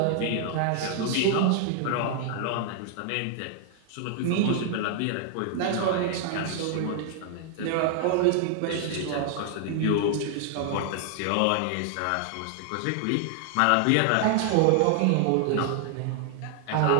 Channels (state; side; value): different; both; correlation 0.00